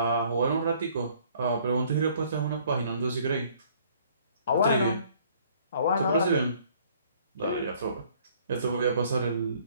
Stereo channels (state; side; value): inverted; both; correlation -0.59